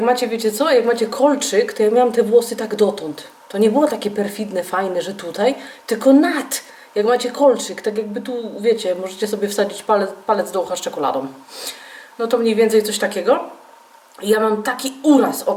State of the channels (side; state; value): both; identical; correlation 1.00